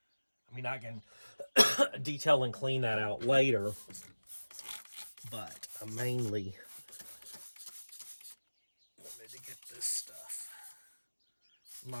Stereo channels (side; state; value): both; inverted; correlation -1.00